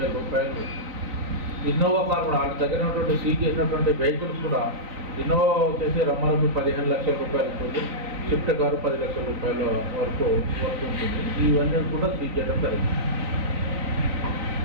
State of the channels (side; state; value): left; late; 3.9 ms